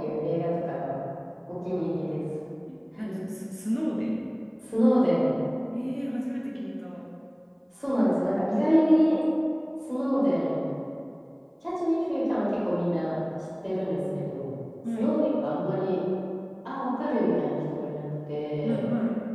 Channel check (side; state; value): both; identical; correlation 1.00